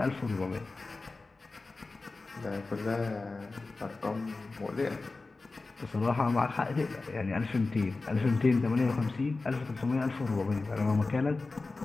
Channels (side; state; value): right; quieter; 3.6 dB